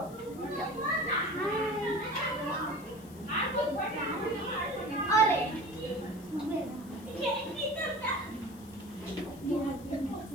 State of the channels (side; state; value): left; noise; hiss, 22 dB below the sound